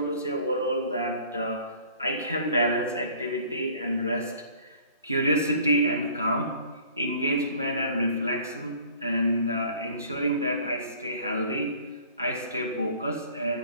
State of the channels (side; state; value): both; inverted; correlation -0.51